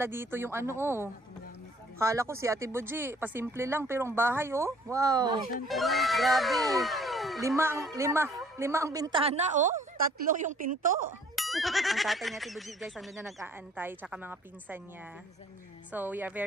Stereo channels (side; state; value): both; normal; correlation 0.57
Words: dito yung ano, oh. Kala ko si Ate Boji, pasimple lang, pero ang bahay, oh. Wow. Grabe. Lima ang bintana, oh. 3 yung pinto. Ang tatay ni Ate Boji, guys, andun na nag-aantay, tsaka mga pinsan niya. So, we are